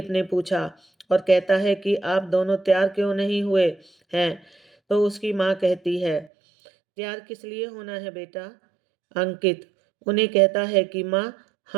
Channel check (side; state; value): left; drops out; at 6.3 s